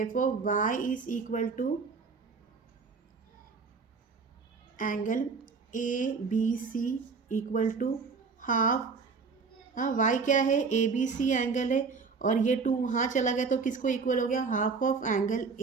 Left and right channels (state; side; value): quieter; left; 4.9 dB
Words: y is equal to angle ABC equal to half, y क्या है ABC एंगल है, और ये 2 वहाँ चला गया तो किसको इक्वल हो गया हाफ ऑफ एंगल